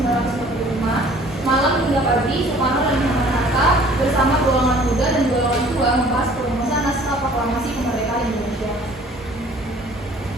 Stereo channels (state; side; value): normal; both; correlation 0.53